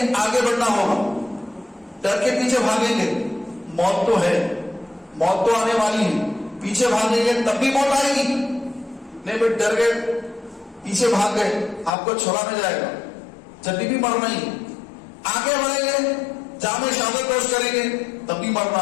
آگے بڑھنا ہوگا. ڈر کے پیچھے بھاگیں گے، موت تو ہے، موت تو آنے والی ہے، پیچھے بھاگیں گے تب بھی موت آئے گی. نہیں بھائی ڈر گئے، پیچھے بھاگ گئے، آپ کو چھوڑا نہ جائے گا. جب بھی مرنا ہی، آگے بڑھیں گے، جامع شہادت پیش کریں گے تب بھی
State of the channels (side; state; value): right; drops out; at 11.9 s